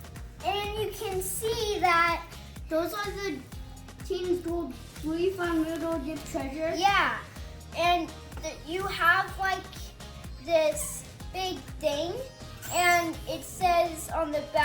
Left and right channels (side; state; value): both; identical; correlation 1.00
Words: And you can see that those are the Team's Gold we found little dip treasure. Yeah, and you have like this big thing, and it says on the